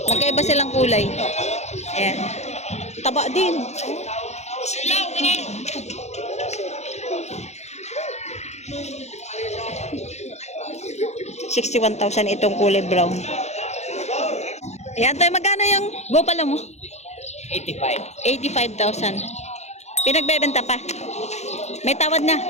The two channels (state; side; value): late; right; 0.32 ms